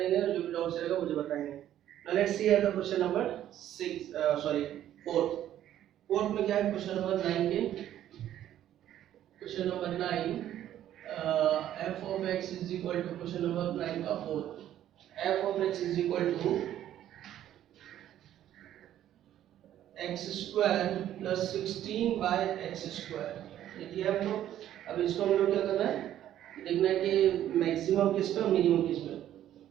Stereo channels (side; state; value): left; quieter; 11.8 dB